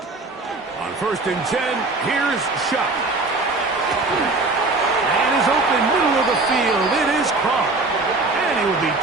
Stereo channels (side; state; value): left; quieter; 3.4 dB